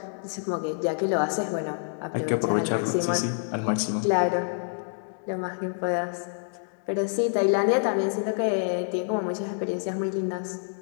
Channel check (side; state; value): right; silent; digital silence